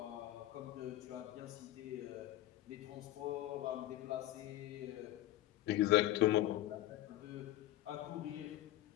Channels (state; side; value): quieter; right; 14.9 dB